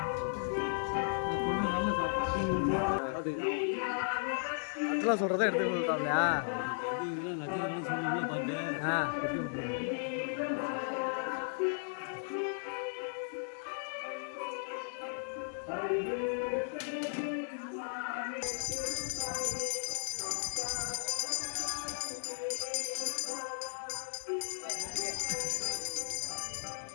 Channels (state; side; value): silent; right; digital silence